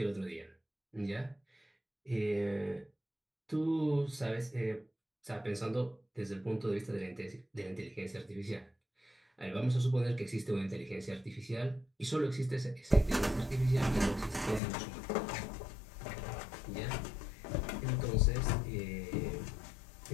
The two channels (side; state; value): right; drops out; at 14.6 s